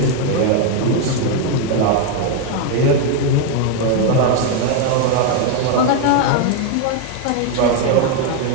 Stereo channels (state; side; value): different; both; correlation 0.01